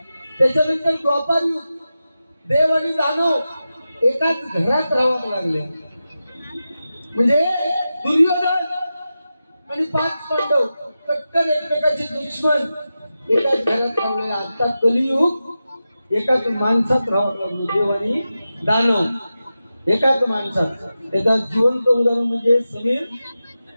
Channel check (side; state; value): both; inverted; correlation -0.92